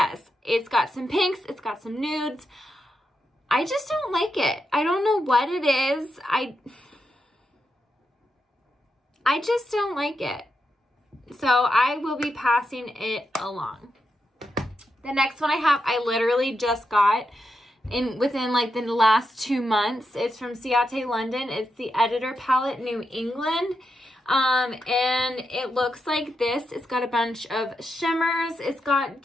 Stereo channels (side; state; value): both; normal; correlation 0.85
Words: it's got some pinks. It's got some nudes. I just don't like it. I don't know what it is. I just don't like it. So I will be passing it along. The next one I have, I literally just got within like the last 2 months. It's from Ciate London. It's the Editor Palette New England. And it looks like this. It's got a bunch of shimmers. It's got